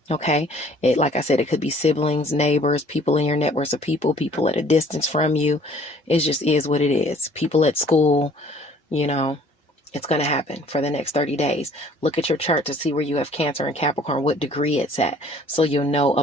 Okay. Like I said, it could be siblings, neighbors, people in your networks of people at a distance from you. It just is what it is. People at school, you know, it's going to happen for the next 30 days. Look at your chart to see where you have Cancer and Capricorn, what degree it's at, so you'll know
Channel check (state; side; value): normal; both; correlation 0.55